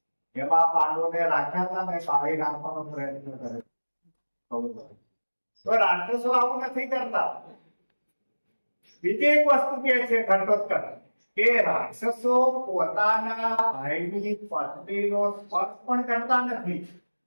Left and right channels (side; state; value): both; inverted; correlation -1.00